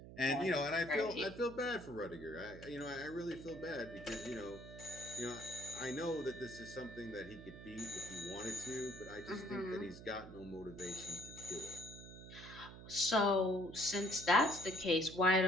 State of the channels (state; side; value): noise; right; hum, 14 dB below the sound